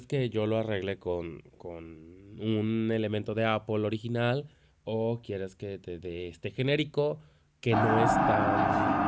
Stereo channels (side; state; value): both; identical; correlation 1.00